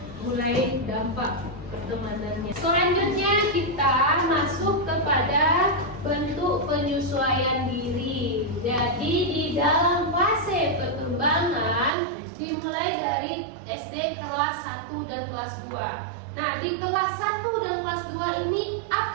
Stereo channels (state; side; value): drops out; left; at 11.9 s